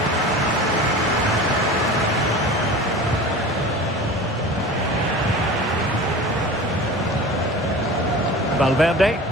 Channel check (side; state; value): both; normal; correlation 0.36